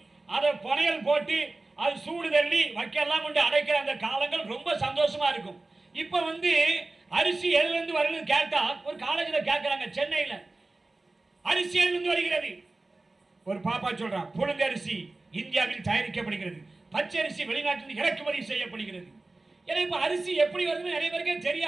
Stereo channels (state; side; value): quieter; left; 3.1 dB